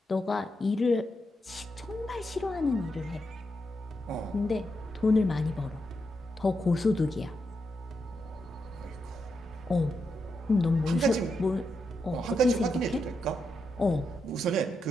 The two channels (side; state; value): both; normal; correlation 0.84